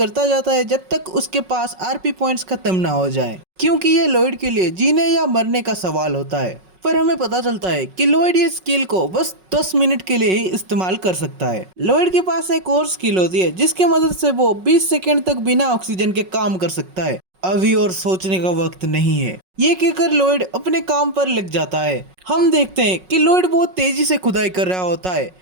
जाता है जब तक उसके पास आरपी पॉइंट्स खत्म ना हो जाए, क्योंकि ये लॉयड के लिए जीने या मरने का सवाल होता है। पर हमें पता चलता है कि लॉयड ये स्किल को बस 10 मिनट के लिए ही इस्तेमाल कर सकता है। लॉयड के पास एक और स्किल होती है जिसकी मदद से वो 20 सेकंड तक बिना ऑक्सीजन के काम कर सकता है। अभी और सोचने का वक्त नहीं है, ये कहकर लॉयड अपने काम पर लग जाता है। हम देखते हैं कि लॉयड बहुत तेजी से खुदाई कर रहा होता है,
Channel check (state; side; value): late; left; 5.4 ms